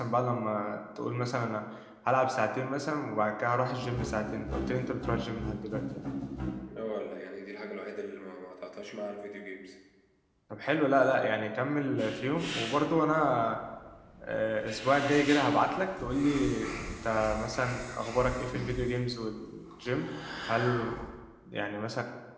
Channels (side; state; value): both; identical; correlation 1.00